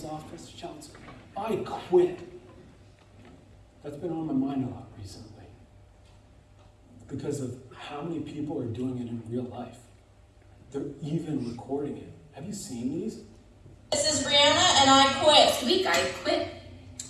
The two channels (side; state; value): both; identical; correlation 1.00